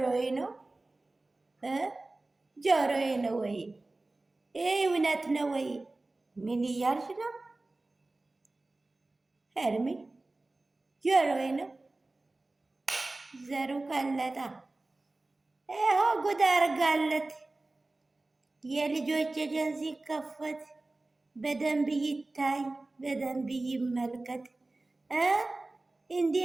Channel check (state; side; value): quieter; left; 3.0 dB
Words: ነው ጆሮዬ ነው ወይ? ይህ እውነት ነው ወይ? ምን እያልሽ ነው ሄርሜ? ጆሮዬ ነው ዘሩ ቀለጣ። ይኸው ጉድ አርጋለት። የልጆች ኤጀንሲ ሲከፈት በደንብ ይታይ፣ በደንብ ይመልከት። እንዲህ